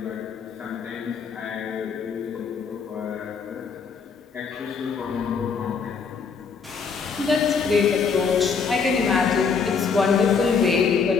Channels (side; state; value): right; quieter; 5.6 dB